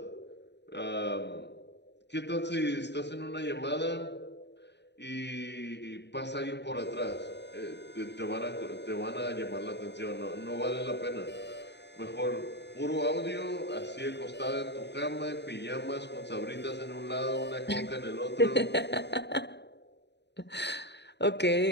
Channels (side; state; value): right; late; 0.50 ms